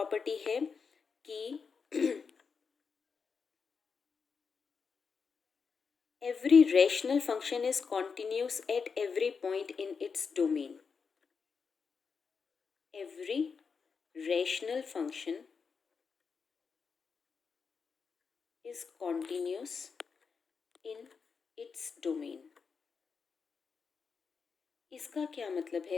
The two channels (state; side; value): quieter; right; 5.5 dB